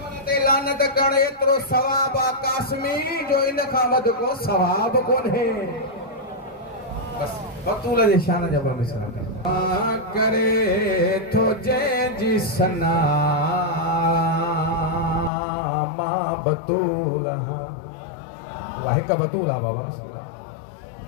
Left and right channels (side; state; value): right; drops out; at 15.3 s